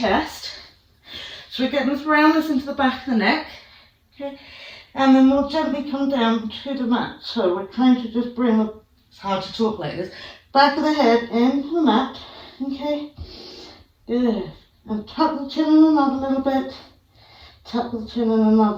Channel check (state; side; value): identical; both; correlation 1.00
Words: So we're getting this roundness into the back of the neck. Okay. And then we'll gently come down to the mat. So we're trying to just bring the, it's hard to talk like this, back of the head into the mat. Okay. Good. And tuck the chin in another little bit. Tuck the chin in